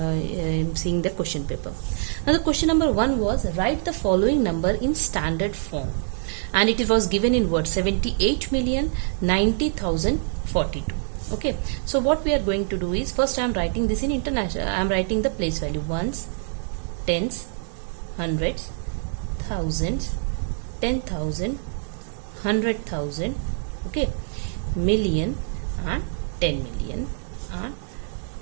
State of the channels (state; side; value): silent; left; 62 dB below the other